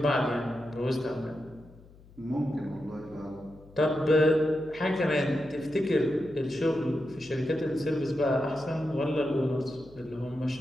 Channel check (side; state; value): left; noise; hum, 23 dB below the sound